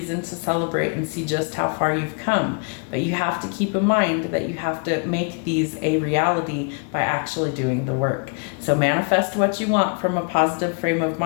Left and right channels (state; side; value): quieter; right; 37.6 dB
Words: to celebrate and see just how far you've come. But you have to keep in mind that you have to make these a reality by actually doing the work. So manifest what you want from a positive frame of